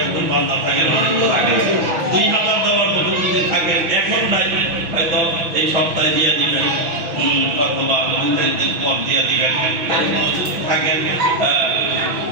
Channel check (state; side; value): late; left; 6.1 ms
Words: একজন বান্দা থাকে আগে 2000 দেওয়ার মতো যদি থাকেন এখন নাই হয়তো এই সপ্তাহে দিয়ে দিবেন অথবা 2 দিন পর দিয়ে দিবেন থাকেন